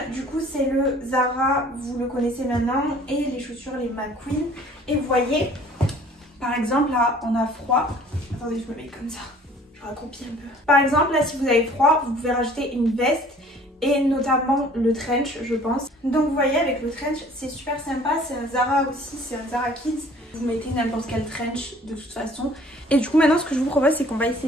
du coup, c'est le Zara. Vous le connaissez maintenant. Et les chaussures, les McQueen. Et vous voyez, par exemple, là, on a froid. Attendez, je me mets comme ça. Je raccroupis un peu. Par exemple, là, si vous avez froid, vous pouvez rajouter une veste et notamment le trench, je pense. Donc, vous voyez, avec le trench, c'est super sympa. C'est un Zara aussi, c'est un Zara Kids. Vous mettez n'importe quel trench de toute façon. Et du coup, maintenant, ce que je vous propose, c'est qu'on va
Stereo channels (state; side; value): normal; both; correlation 0.52